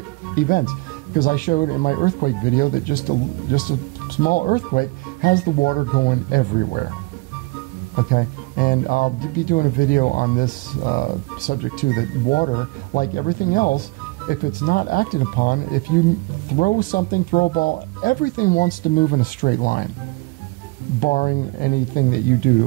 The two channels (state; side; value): quieter; left; 24.2 dB